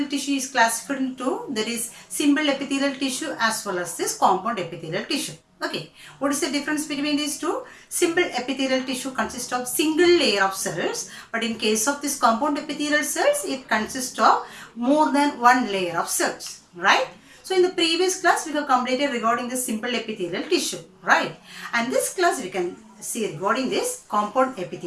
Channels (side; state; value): both; identical; correlation 1.00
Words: tissue is classified into, there is simple epithelial tissue as well as this compound epithelial tissue. Okay, what is the difference between these two? Simple epithelial tissue consists of single layer of cells, but in case of this compound epithelial cells, it consists of more than one layer of cells, right? So in the previous class, we have completed regarding the simple epithelial tissue, right? And this class we can see regarding this compound